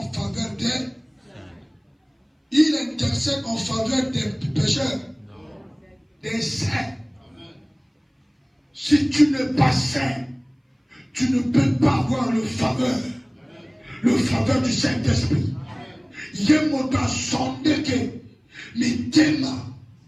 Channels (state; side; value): identical; both; correlation 1.00